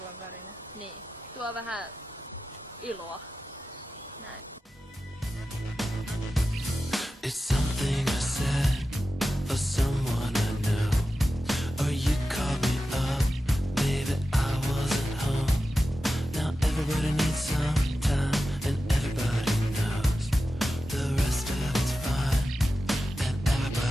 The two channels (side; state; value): both; normal; correlation 0.93